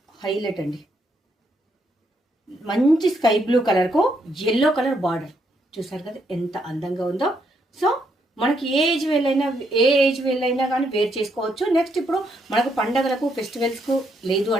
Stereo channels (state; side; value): normal; both; correlation 0.75